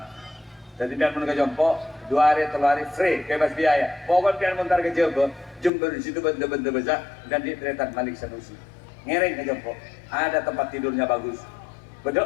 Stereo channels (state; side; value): drops out; right; at 5.7 s